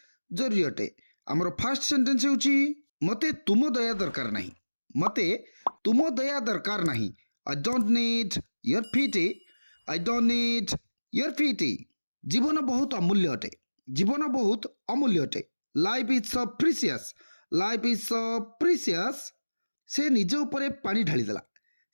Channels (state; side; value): inverted; both; correlation -1.00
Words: जरूरी अटे। हमर फर्स्ट सेंटेंस होची मते तुम दया दरकार नहीं। मते तुम दया दरकार नहीं। I don't need your pity. I don't need your pity. जीवन बहुत अमूल्य अटे। जीवन बहुत अमूल्य अटे। Life is so precious. Life is so precious. से निज उपरे पानी ढाली देला।